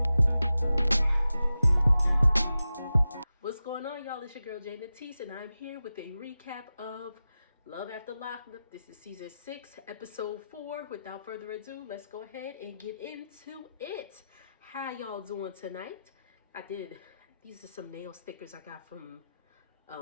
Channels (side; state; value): both; inverted; correlation -0.93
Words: What's going on, y'all? It's your girl Jay Natisse, and I'm here with a recap of Love After Lockup. This is season 6, episode 4. Without further ado, let's go ahead and get into it. How y'all doing tonight? These are some nail stickers I got from